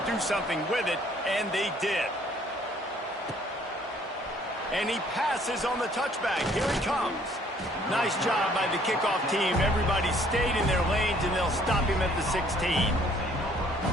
do something with it, and they did. And he passes on the touchback. Here he comes. Nice job by the kickoff team. Everybody stayed in their lanes, and they'll stop him at the 16.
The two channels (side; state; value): both; normal; correlation 0.60